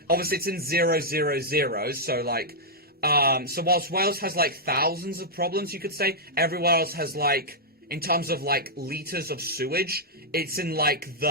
obviously it's in 000, so like, so whilst Wales has like thousands of problems, you could say, everywhere else has like, in terms of like liters of sewage, it's in like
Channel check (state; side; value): normal; both; correlation -0.07